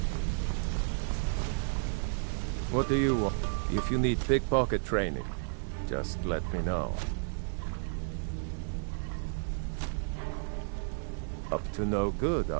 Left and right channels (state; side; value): silent; left; 56 dB below the other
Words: What do you want? If you need pickpocket training, just let me know. Up to no good,